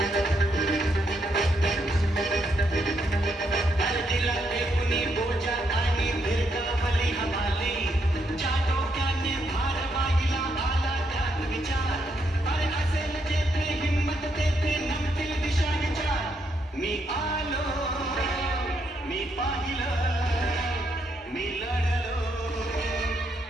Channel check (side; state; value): both; normal; correlation 0.77